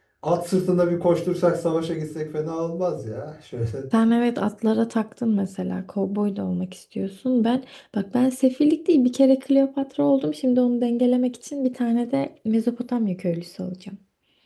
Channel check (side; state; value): both; identical; correlation 1.00